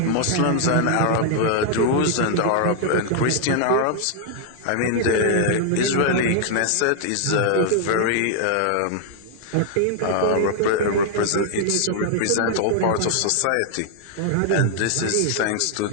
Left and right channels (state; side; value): different; both; correlation -0.01